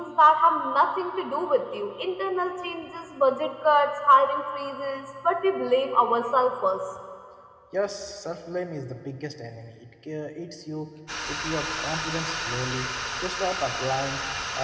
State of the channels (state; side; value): identical; both; correlation 1.00